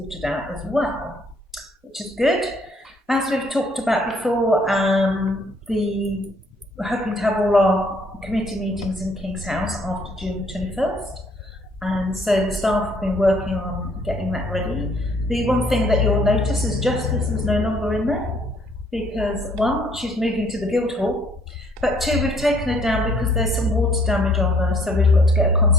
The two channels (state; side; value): normal; both; correlation 0.63